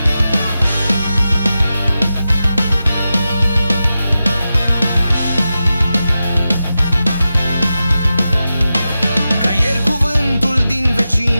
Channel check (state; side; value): inverted; both; correlation -0.92